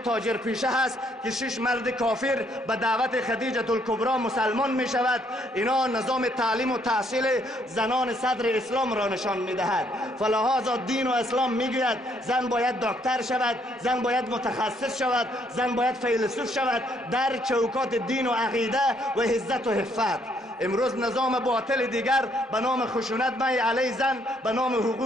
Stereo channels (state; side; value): normal; both; correlation 0.69